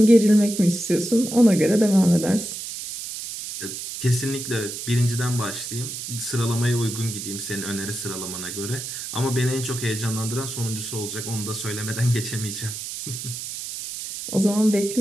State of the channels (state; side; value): noise; right; hiss, 7 dB below the sound